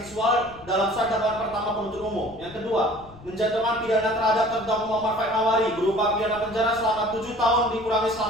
dalam surat dakwaan pertama penuntut umum. Yang kedua, menjatuhkan pidana terhadap terdakwa Muhammad Faik Hawari berupa pidana penjara selama 7 tahun dikurangi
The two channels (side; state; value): left; noise; rumble, 21 dB below the sound